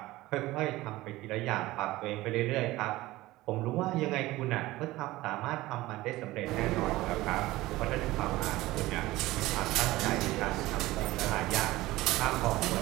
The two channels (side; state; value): left; quieter; 18.1 dB